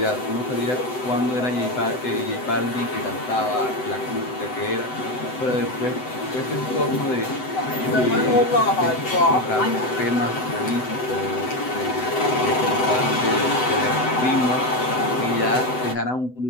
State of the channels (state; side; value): late; right; 7.9 ms